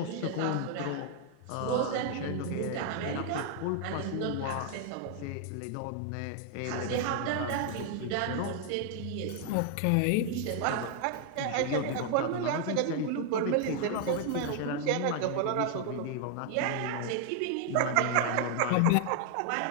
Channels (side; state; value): both; different; correlation 0.00